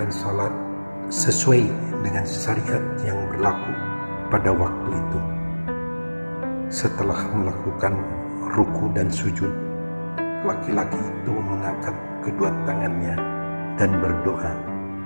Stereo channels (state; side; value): inverted; both; correlation -1.00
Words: salat sesuai dengan syariat yang berlaku pada waktu itu. Setelah melakukan ruku dan sujud, laki-laki itu mengangkat kedua tangannya dan berdoa.